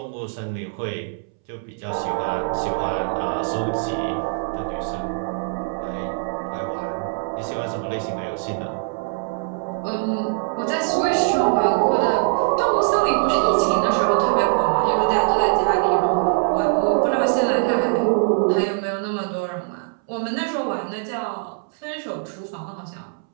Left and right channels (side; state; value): left; silent; 64 dB below the other